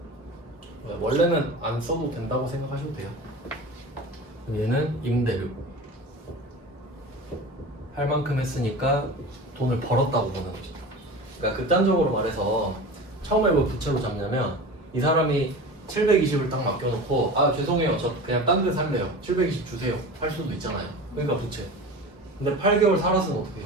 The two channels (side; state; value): both; normal; correlation 0.33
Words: 원래는 안 써도 된다고 생각하셔도 돼요. 얘는 임대료. 할 만큼 했으니까 돈을 벌었다고 보는 거죠. 그러니까 극단적으로 말해서 처음에 왜 부채로 잡냐면 이 사람이 720을 딱 맡겨놓고 아 죄송해요 저 그냥 딴 데 살래요 720 주세요 할 수도 있잖아요. 그러니까 부채. 근데 8개월 살았으면 어떻게